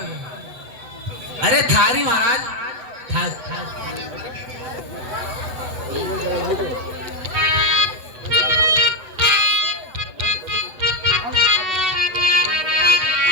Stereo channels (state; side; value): late; left; 8.0 ms